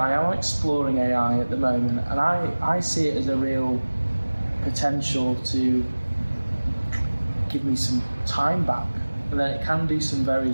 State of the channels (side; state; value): both; inverted; correlation -1.00